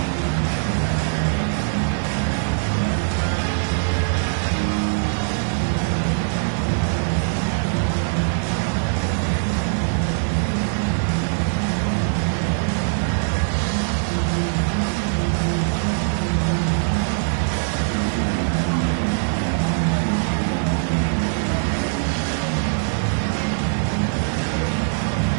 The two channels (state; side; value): silent; left; digital silence